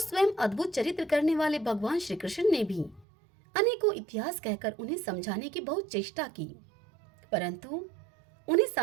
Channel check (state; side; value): drops out; left; at 3.1 s